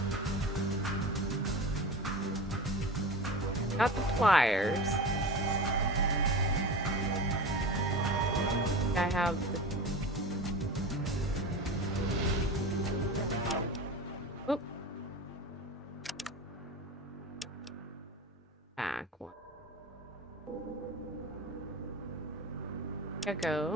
Got the pliers. I have the... Oop. Back one.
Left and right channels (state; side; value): normal; both; correlation 0.30